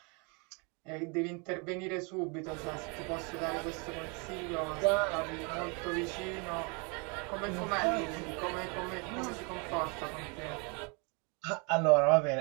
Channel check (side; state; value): left; quieter; 32.6 dB